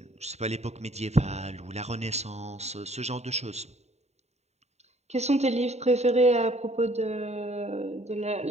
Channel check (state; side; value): late; left; 0.32 ms